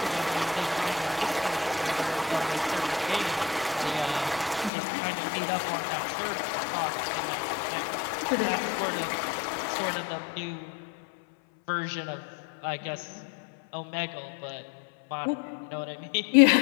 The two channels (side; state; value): right; drops out; at 4.7 s